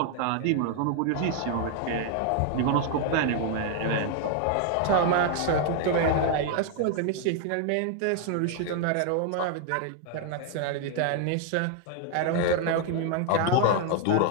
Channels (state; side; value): different; both; correlation 0.00